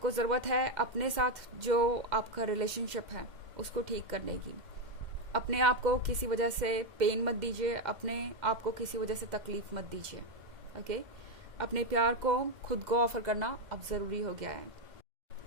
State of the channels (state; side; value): late; left; 2.0 ms